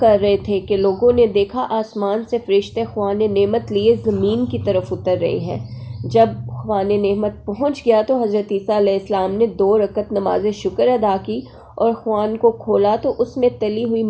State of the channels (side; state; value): both; identical; correlation 1.00